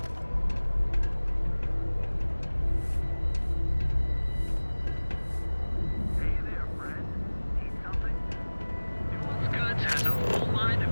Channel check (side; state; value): both; inverted; correlation -1.00